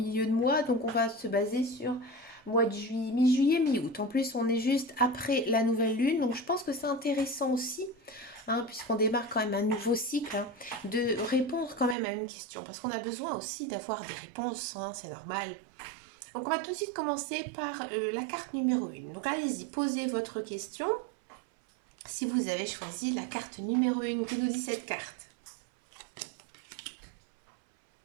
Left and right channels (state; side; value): drops out; left; at 12.0 s